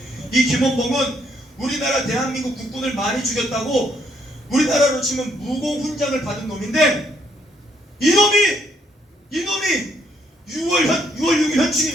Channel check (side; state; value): both; normal; correlation 0.71